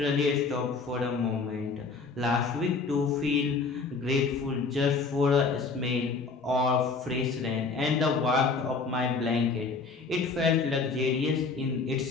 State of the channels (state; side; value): quieter; right; 4.5 dB